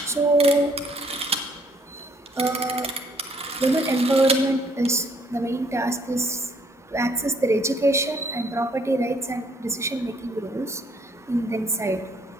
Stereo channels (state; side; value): normal; both; correlation 0.65